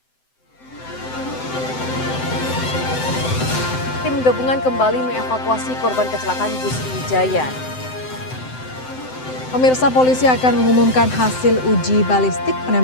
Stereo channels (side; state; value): right; late; 7.8 ms